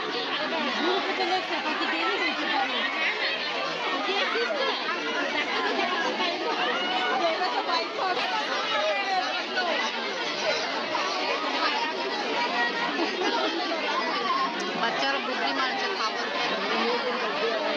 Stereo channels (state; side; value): identical; both; correlation 1.00